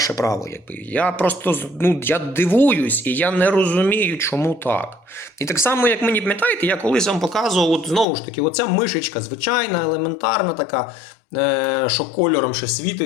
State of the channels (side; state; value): right; drops out; at 8.1 s